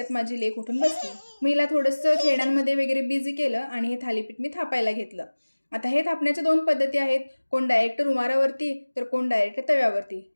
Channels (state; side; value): inverted; both; correlation -1.00